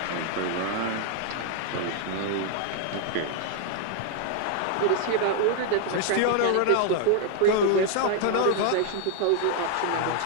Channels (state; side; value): different; both; correlation 0.00